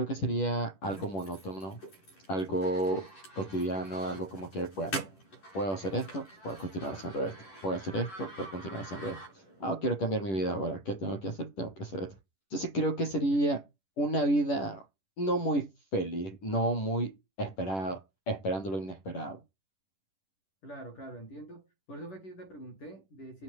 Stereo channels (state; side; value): late; right; 10 ms